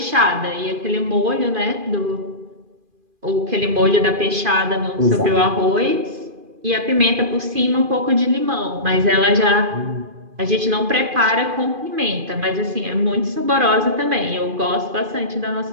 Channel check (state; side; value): late; left; 2.4 ms